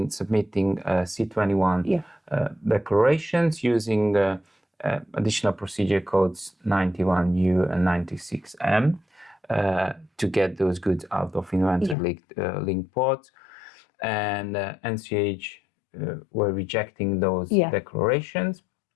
submitting C21 declarations using additional procedure codes 91U and 96M to get those goods out of inventory linked ports, and NCH were rejecting those declarations,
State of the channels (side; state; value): right; drops out; at 12.0 s